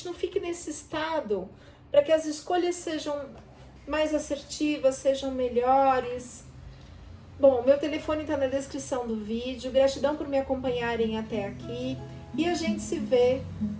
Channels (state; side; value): identical; both; correlation 1.00